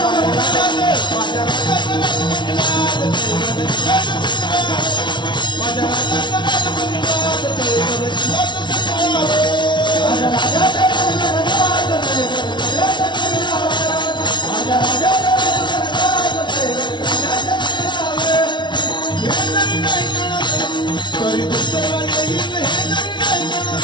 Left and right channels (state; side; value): late; right; 0.23 ms